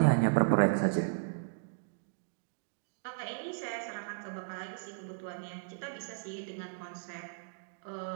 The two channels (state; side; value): silent; left; digital silence